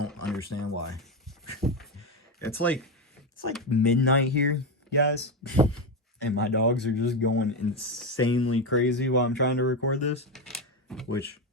understand why. It's like midnight here, guys. And my dogs are just going insanely crazy while I'm trying to record this, which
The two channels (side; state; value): both; normal; correlation 0.12